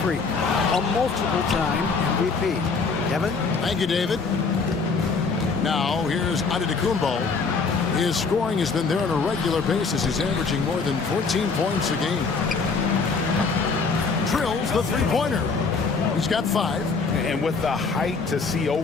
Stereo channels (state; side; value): quieter; right; 4.7 dB